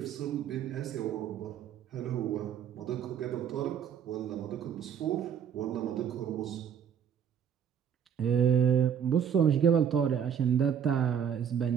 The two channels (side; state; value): left; quieter; 8.4 dB